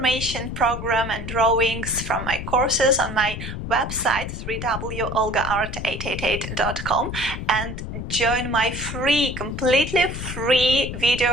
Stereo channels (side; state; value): left; noise; rumble, 7 dB below the sound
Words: program, and drawings from my courses on my website www.olgaart888.com and join my completely free